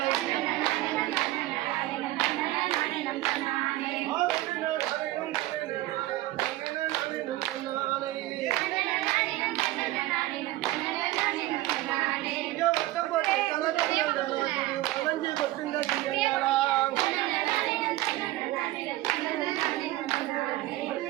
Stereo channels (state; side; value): quieter; left; 17.0 dB